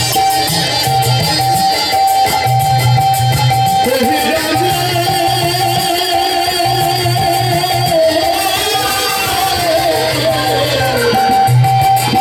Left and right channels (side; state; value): both; identical; correlation 1.00